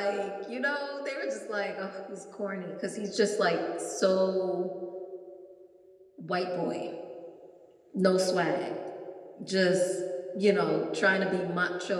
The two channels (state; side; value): identical; both; correlation 1.00